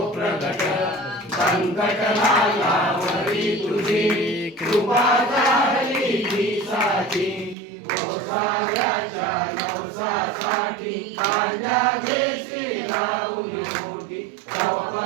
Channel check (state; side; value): drops out; left; at 7.6 s